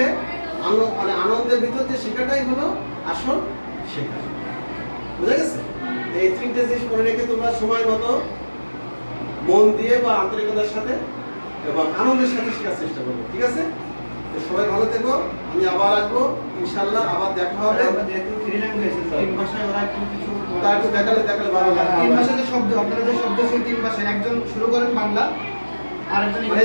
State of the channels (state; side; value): inverted; both; correlation -1.00